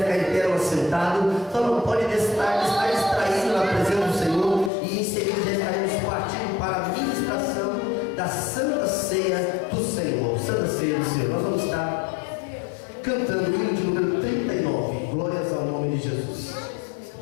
ficar em pé ou assentado, só não pode estar distraído na presença do Senhor, e em seguida já estaremos partindo para a administração da Santa Ceia do Senhor. Santa Ceia do Senhor. Nós vamos estar cantando o hino de número 39. Glórias ao nome de Jesus.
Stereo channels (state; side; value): drops out; right; at 4.7 s